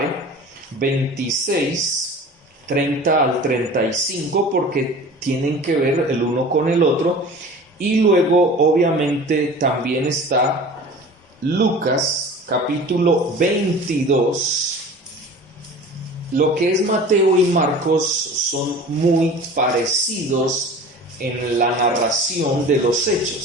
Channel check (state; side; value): normal; both; correlation 0.40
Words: 26, 30 al 35, porque tienen que ver el uno con el otro. Y luego, obviamente, también está Lucas, capítulo 22. Lo que es Mateo y Marcos son muy parecidos en la narración de los